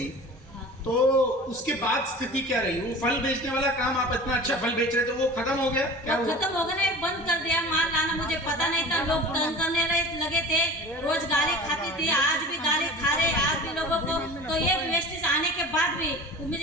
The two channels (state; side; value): normal; both; correlation 0.39